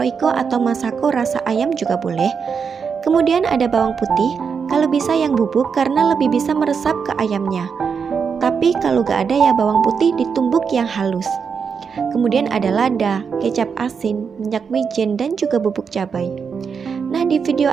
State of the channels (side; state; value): left; quieter; 6.1 dB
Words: atau masako rasa ayam juga boleh. Kemudian ada bawang putih, kalau bisa yang bubuk karena lebih bisa meresap ke ayamnya. Tapi kalau gak ada ya bawang putih ditumbuk yang halus. Kemudian ada lada, kecap asin, minyak wijen, dan juga bubuk cabai. Nah, di video